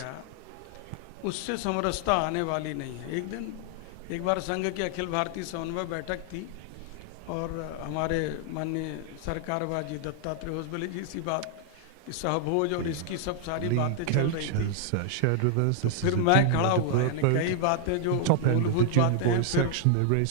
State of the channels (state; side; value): different; both; correlation 0.00